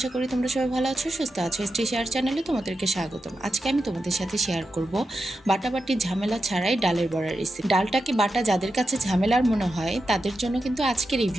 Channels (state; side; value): normal; both; correlation 0.89